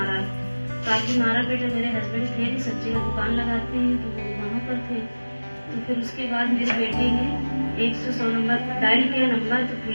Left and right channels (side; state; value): both; inverted; correlation -1.00